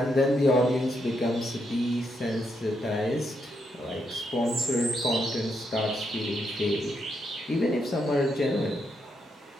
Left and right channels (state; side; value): normal; both; correlation 0.79